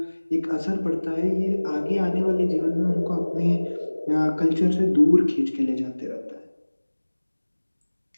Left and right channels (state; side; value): inverted; both; correlation -1.00